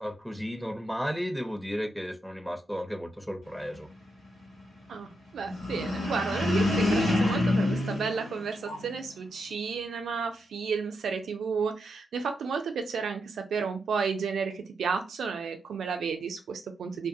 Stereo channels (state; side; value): normal; both; correlation 0.84